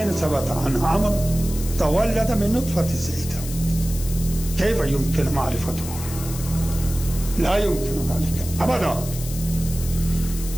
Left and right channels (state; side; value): noise; left; hiss, 11 dB below the sound